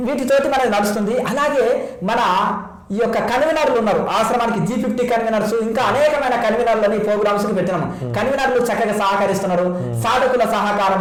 వీటితోటి మనకి నడుస్తుంది. అలాగే మన ఈ యొక్క కన్వీనర్లు ఉన్నారు ఆశ్రమానికి, G50 కన్వీనర్స్, ఇంకా అనేకమైన కన్వీనర్లని ప్రోగ్రామ్స్ కి పెట్టినాము. కన్వీనర్లు చక్కగా సహకరిస్తున్నారు. సాధకుల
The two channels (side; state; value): both; identical; correlation 1.00